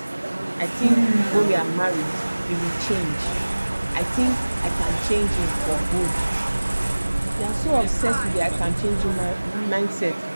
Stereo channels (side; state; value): both; inverted; correlation -1.00